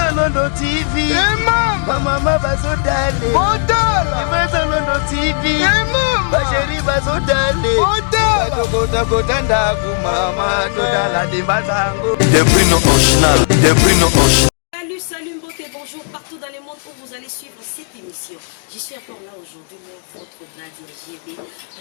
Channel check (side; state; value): right; silent; 60 dB below the other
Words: London TV. Mama bazodale. Odala. Dembanza London TV. Basheri bazodale. Odala. Kota ndaku mama todala Dembanza ngo. Des Bruno original, des Bruno original. Salut beauté, bonjour partout dans le monde où vous allez suivre cette émission. Je suis encore là aujourd'hui, moi, votre Nadia GB.